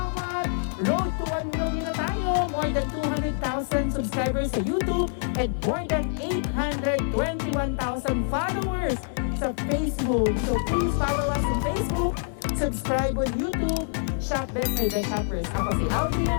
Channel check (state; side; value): silent; right; digital silence